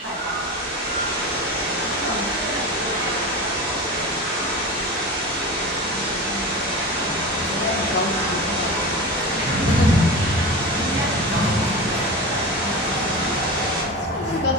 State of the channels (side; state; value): both; normal; correlation 0.28